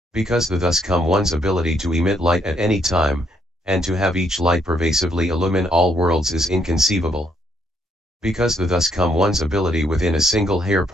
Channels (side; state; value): both; normal; correlation 0.72